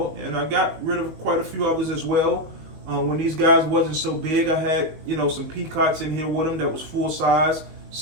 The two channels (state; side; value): late; left; 19 ms